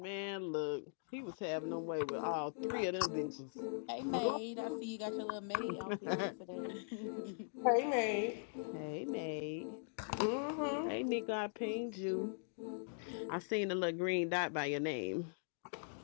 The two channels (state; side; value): silent; right; digital silence